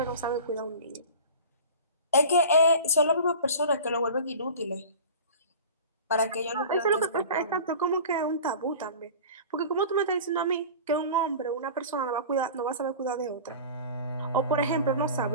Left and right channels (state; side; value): inverted; both; correlation -0.37